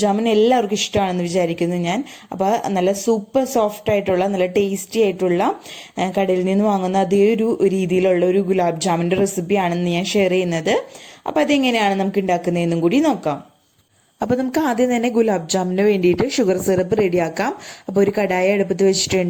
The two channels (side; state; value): both; identical; correlation 1.00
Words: ജാമുൻ എല്ലാവർക്കും ഇഷ്ടമാണെന്ന് വിചാരിക്കുന്നു ഞാൻ. അപ്പോൾ നല്ല സൂപ്പർ സോഫ്റ്റ് ആയിട്ടുള്ള നല്ല ടേസ്റ്റി ആയിട്ടുള്ള കടയിൽ നിന്ന് വാങ്ങുന്ന അതേ ഒരു രീതിയിലുള്ള ഒരു ഗുലാബ് ജാമുൻ്റെ റെസിപ്പിയാണെന്ന് ഞാൻ ഷെയർ ചെയ്യുന്നത്. അപ്പോൾ അതെങ്ങനെയാണ് നമുക്ക് ഉണ്ടാക്കുന്നതെന്നും കൂടി നോക്കാം. അപ്പോൾ നമുക്ക് ആദ്യം തന്നെ ഗുലാബ് ജാമുന് വേണ്ടിയിട്ട് ഷുഗർ സിറപ്പ് റെഡിയാക്കാം. അപ്പോൾ ഒരു കടായി അടുപ്പത്ത്